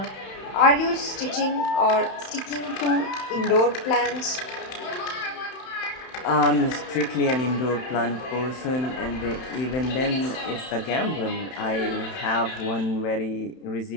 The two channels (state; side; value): late; right; 31 ms